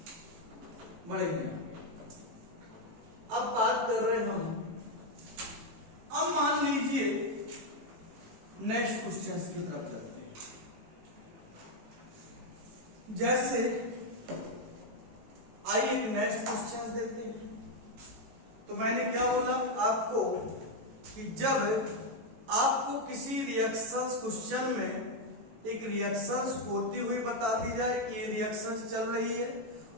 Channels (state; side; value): late; left; 18 ms